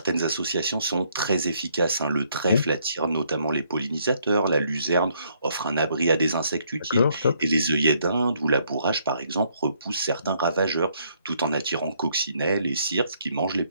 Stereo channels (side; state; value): both; inverted; correlation -0.69